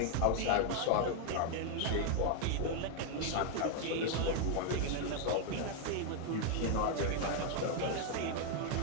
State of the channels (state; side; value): different; both; correlation 0.00